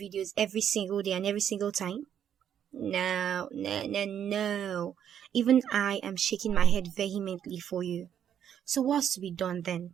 videos every single day and every single time? No, no, no, no. Even I am shaking my head vehemently for you. So what's to be done then?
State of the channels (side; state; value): left; quieter; 9.3 dB